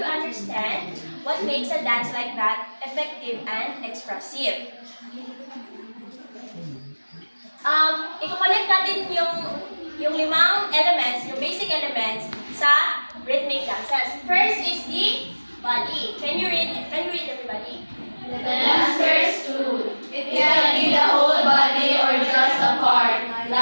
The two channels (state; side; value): inverted; both; correlation -1.00